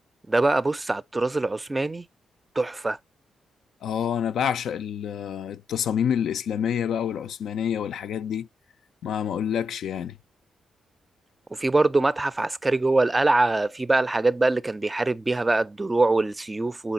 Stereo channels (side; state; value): both; normal; correlation 0.88